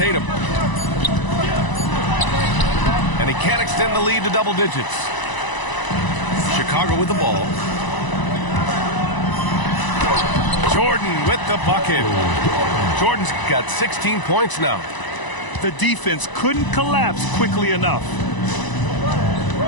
And he can't extend the lead to double digits. Chicago with the ball. Jordan with the bucket. Jordan's got 16 points now. The defense couldn't collapse quickly enough.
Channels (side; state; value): right; late; 1.0 ms